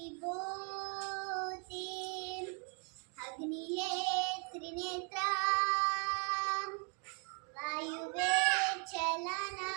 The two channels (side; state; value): left; quieter; 37.7 dB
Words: ಅಗ್ನಿಯೇ ತ್ರಿನೇತ್ರ, ವಾಯುವೇ ಚಲನ,